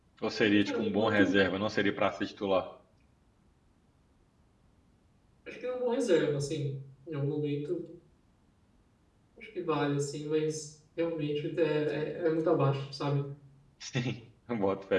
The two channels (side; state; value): both; identical; correlation 1.00